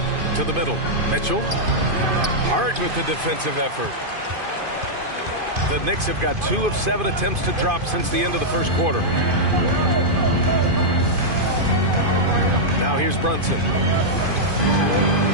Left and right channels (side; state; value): left; late; 2.5 ms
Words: to the middle. Mitchell. Hart with the defensive effort. The Knicks have got 2 of 7 attempts to drop since the end of the first quarter. Now here's Brunson.